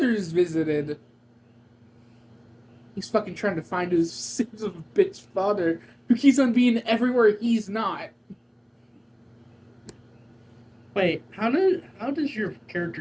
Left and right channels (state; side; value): identical; both; correlation 1.00